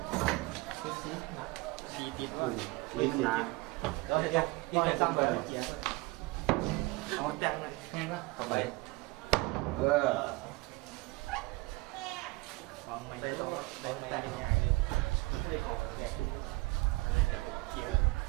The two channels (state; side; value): quieter; left; 22.8 dB